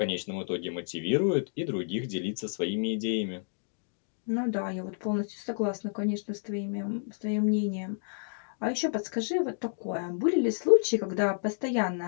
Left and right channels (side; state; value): right; silent; digital silence